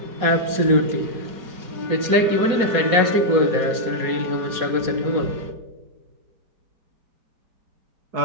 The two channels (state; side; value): late; left; 4.2 ms